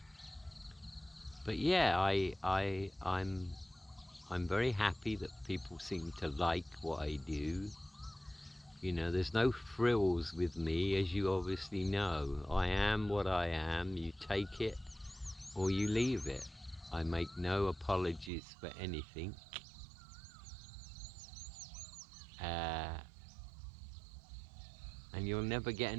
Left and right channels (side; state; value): left; drops out; at 18.3 s